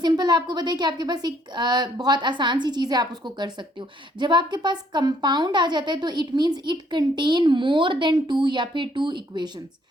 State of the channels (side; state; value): both; normal; correlation 0.66